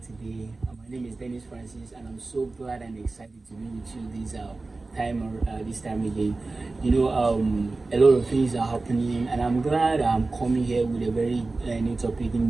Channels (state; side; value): quieter; left; 3.5 dB